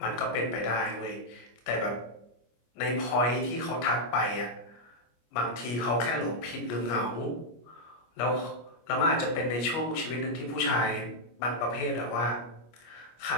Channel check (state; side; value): late; right; 25 ms